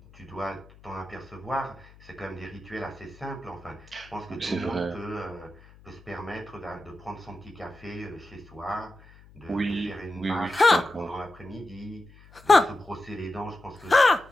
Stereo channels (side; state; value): left; noise; hum, 23 dB below the sound